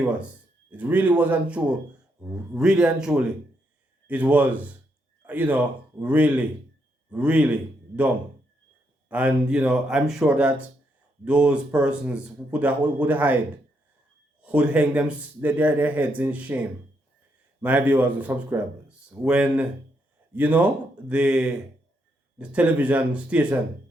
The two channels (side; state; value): both; normal; correlation 0.78